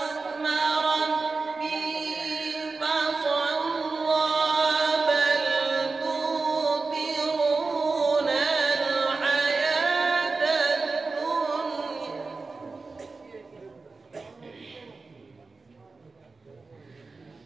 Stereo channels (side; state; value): left; quieter; 4.0 dB